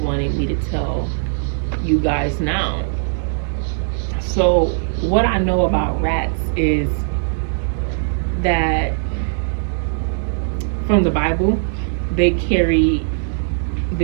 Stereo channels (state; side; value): silent; left; 66 dB below the other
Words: me to tell you guys now. So what I know about rats is that from the Bible, they carry